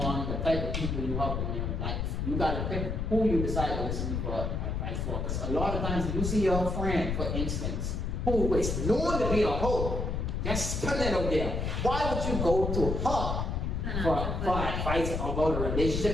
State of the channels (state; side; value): noise; left; rumble, 1 dB below the sound